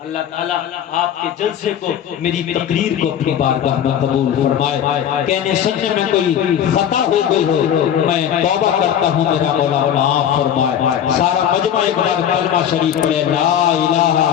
تعالیٰ آپ کے جلسے کو، میری تقریر کو اپنی بارگاہ میں قبول فرمائے۔ کہنے سننے میں کوئی خطا ہو گئی ہو میں توبہ کرتا ہوں، میرا مولا معاف فرمائے۔ سارا مجمع ایک بار کلمہ شریف پڑھے، لا الہ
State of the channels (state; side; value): quieter; right; 9.6 dB